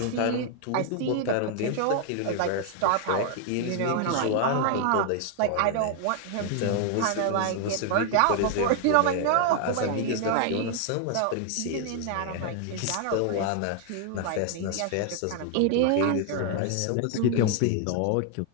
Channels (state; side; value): different; both; correlation 0.00